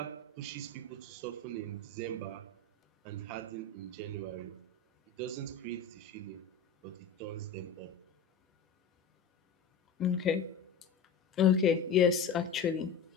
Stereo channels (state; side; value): quieter; right; 5.0 dB